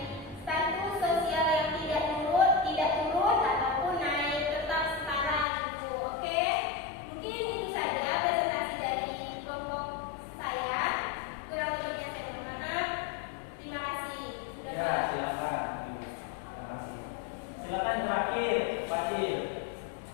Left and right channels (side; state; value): right; drops out; at 5.5 s